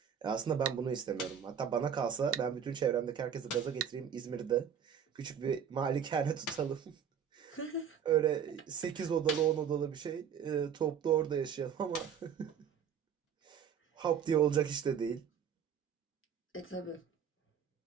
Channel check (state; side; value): quieter; left; 8.0 dB